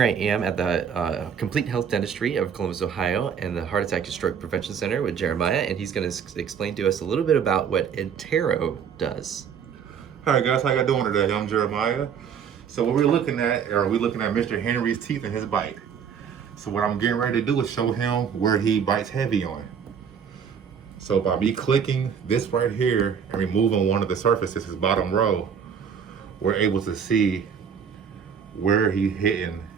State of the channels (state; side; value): quieter; left; 7.4 dB